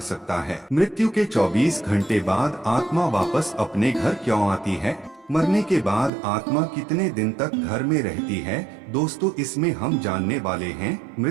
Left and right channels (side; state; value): left; drops out; at 6.1 s